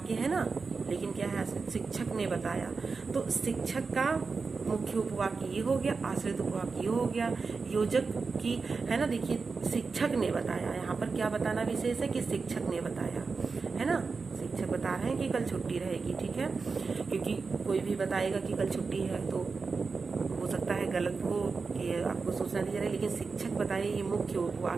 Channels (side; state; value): left; quieter; 4.6 dB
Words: है ना, लेकिन क्या है, शिक्षक ने बताया, तो शिक्षक का मुख्य उपवाक्य ये हो गया, आश्रित उपवाक्य ये हो गया, योजक की, है ना। देखिए, शिक्षक ने बताया, यहाँ पर क्या बताना विशेष है कि शिक्षक ने बताया, है ना। शिक्षक बता रहे हैं कि कल छुट्टी रहेगी, ठीक है, क्योंकि कोई भी बताएगा कि कल छुट्टी है तो हो सकता है गलत हो कि आपको सूचना दी जा रही है, लेकिन शिक्षक बताए, ये मुख्य